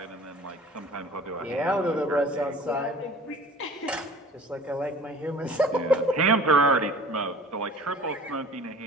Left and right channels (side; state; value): both; normal; correlation 0.46